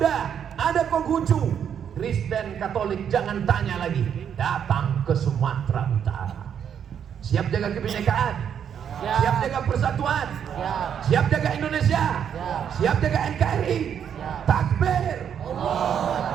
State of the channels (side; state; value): left; quieter; 8.4 dB